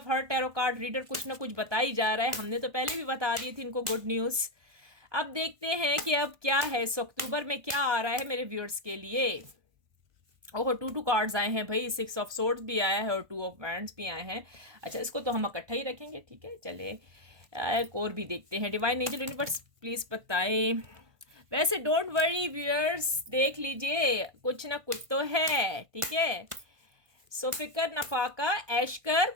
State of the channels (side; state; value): left; late; 1.5 ms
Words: हर टैरो कार्ड रीडर कुछ ना कुछ बता ही जा रहा है। हमने तो पहले भी बता दी थी इनको गुड न्यूज़। अब देखते हैं कि अब क्या है, इस अक्टूबर में क्या आ रहा है मेरे व्यूअर्स के लिए। ओह, 2 कार्ड्स आए हैं भाई, 6 ऑफ सोर्ड्स भी आया है और 2 ऑफ वैंड्स भी आए हैं। अच्छा, इसको तो हम इकट्ठा ही रखेंगे, ठीक है। चले एक और भी देखते हैं। डिवाइन एंजल यूनिवर्स प्लीज़ बताएं। वैसे डोंट वरी व्यूअर्स, देख लीजिए कुछ ना कुछ तो है, ठीक है। सो फिकर नफाका ऐशकर